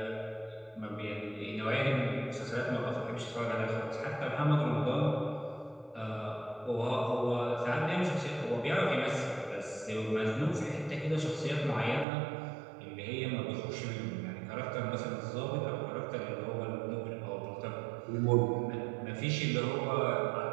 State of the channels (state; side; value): drops out; left; at 12.1 s